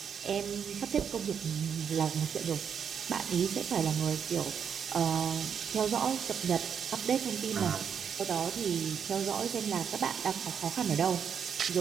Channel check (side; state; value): left; quieter; 7.4 dB